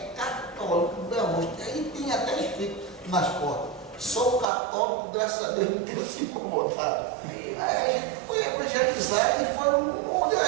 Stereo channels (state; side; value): drops out; left; at 4.5 s